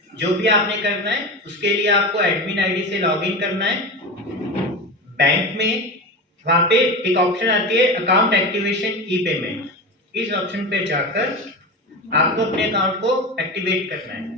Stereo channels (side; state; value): both; normal; correlation 0.24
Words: जो भी आपने करना है उसके लिए आपको एडमिन आईडी से लॉगिन करना है बैंक में। वहां पे एक ऑप्शन आती है अकाउंट एक्टिवेशन ई पेमेंट, इस ऑप्शन पे जाकर आपको अपने अकाउंट को एक्टिवेट करना